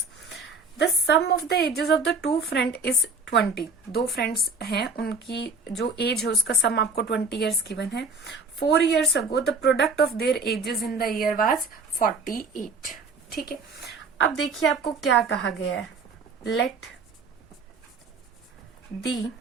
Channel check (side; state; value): left; quieter; 4.0 dB